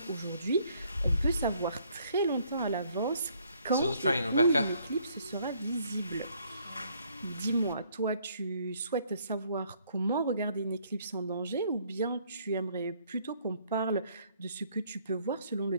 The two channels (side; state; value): both; inverted; correlation -0.65